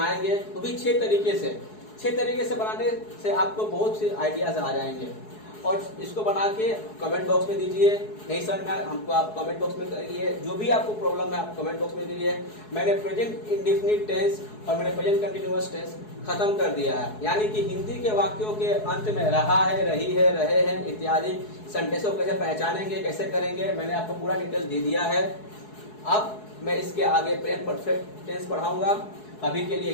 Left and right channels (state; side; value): late; right; 4.7 ms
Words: वो भी 6 तरीके से। 6 तरीके से बनाने से आपको बहुत से आइडियाज आ जाएंगे और इसको बना के कमेंट बॉक्स में दीजिए। नहीं सर मैं हमको आप कमेंट बॉक्स में करिए, जो भी आपको प्रॉब्लम है आप कमेंट बॉक्स में करिए। मैंने प्रेजेंट इंडेफिनिट टेंस और मैंने प्रेजेंट कंटिन्यूअस टेंस खत्म कर दिया है, यानी कि हिंदी के वाक्यों के अंत में रहा है, रही है, रहे हैं इत्यादि सेंटेंसों को कैसे पहचानेंगे, कैसे करेंगे, मैंने आपको पूरा डिटेल दे दिया है। अब मैं इसके आगे प्रेजेंट परफेक्ट टेंस पढ़ाऊंगा। अभी के लिए